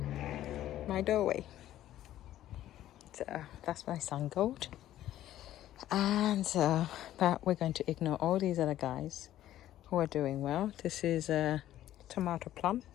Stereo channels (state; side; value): quieter; right; 13.0 dB